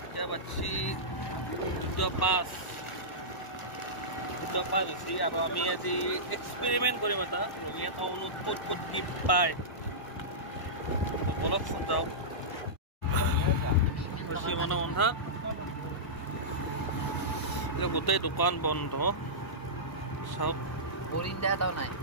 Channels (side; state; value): right; late; 1.0 ms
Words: এতিয়া বাজি 2:05 হৈছে আৰু আমি আজি এক্সপেৰিমেন্ট কৰিম এটা ৰঙিয়া টাউনত ক'ত ক'ত কি পায় বলকচোন যাওক বেছি মানে বন্ধা গোটেই দোকান বন্ধ চাওক